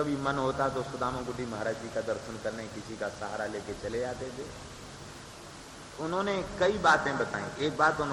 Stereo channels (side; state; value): both; identical; correlation 1.00